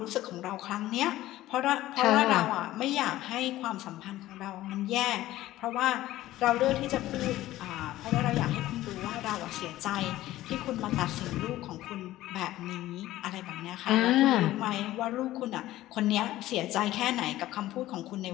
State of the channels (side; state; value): right; quieter; 15.4 dB